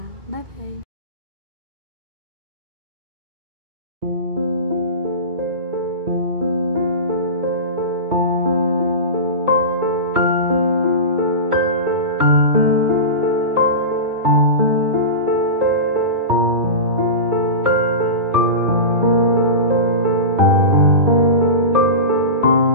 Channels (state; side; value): late; left; 2.3 ms